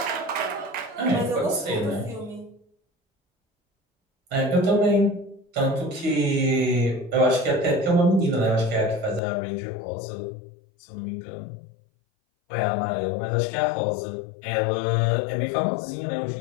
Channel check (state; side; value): drops out; right; at 9.2 s